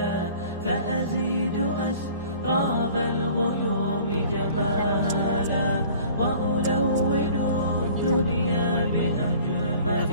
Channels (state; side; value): inverted; both; correlation -0.48